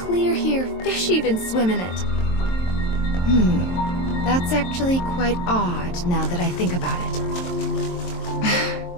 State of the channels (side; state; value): right; late; 23 ms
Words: here, fish even swim in it. That's actually quite odd now that I think about it.